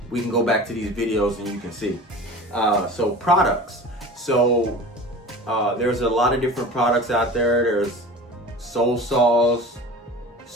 We can go back to these videos and you can see. So products. So there's a lot of different products out there. There's Soul Saws,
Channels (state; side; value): normal; both; correlation 0.37